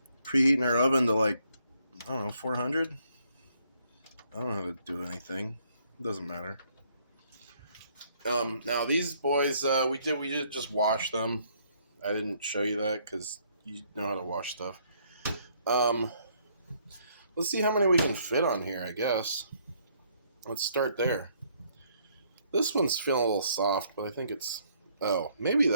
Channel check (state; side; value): inverted; both; correlation -0.68